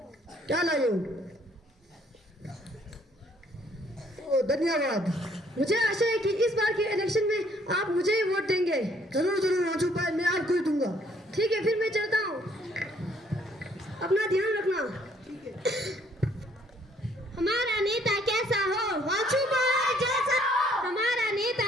क्या लाए हो? ओ, धन्यवाद। मुझे आशा है कि इस बार के इलेक्शन में आप मुझे ही वोट देंगे। जरूर वांचू भाई, मैं आपको ही दूंगा। ठीक है, फिर मैं चलता हूँ। अपना ध्यान रखना। हमारा नेता कैसा हो, वाजपेयी जैसा हो। हमारा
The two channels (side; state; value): both; normal; correlation 0.64